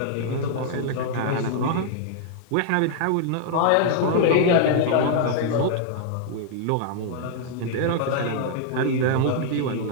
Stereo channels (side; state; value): both; different; correlation 0.00